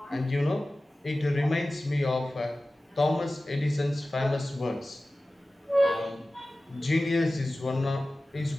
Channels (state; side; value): normal; both; correlation 0.96